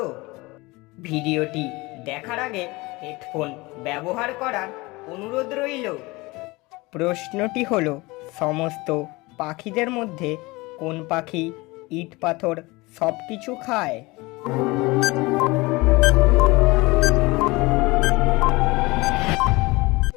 ভিডিওটি দেখার আগে হেডফোন ব্যবহার করার অনুরোধ রইল। প্রশ্নটি হলো, সমস্ত পাখিদের মধ্যে কোন পাখি ইট পাথর সব কিছু খায়?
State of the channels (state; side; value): quieter; right; 23.0 dB